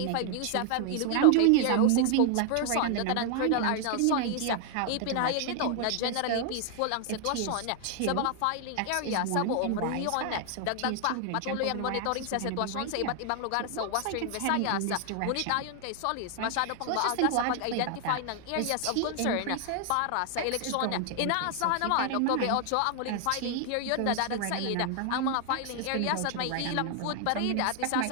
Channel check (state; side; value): different; both; correlation 0.00